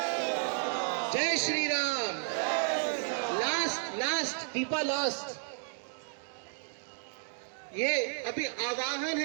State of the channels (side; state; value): left; silent; 56 dB below the other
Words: जय श्री राम लास्ट दीपा लास्ट ये अभी आवाहन